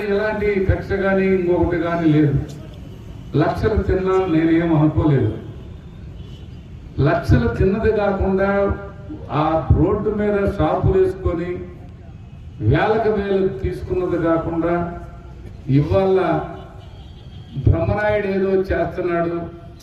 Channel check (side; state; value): both; identical; correlation 1.00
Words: ఎలాంటి కక్ష కానీ ఇంకొకటి కానీ లేదు. లక్షలు తిన్నా నేనేం అనుకోలేదు. లక్షలు తిన్నది కాకుండా ఆ రోడ్డు మీద షాపులు వేసుకొని వేలకు వేలు తీసుకున్నది కాకుండా ఇవాళ బ్రహ్మనాయుడు ఏదో చేస్తున్నాడు.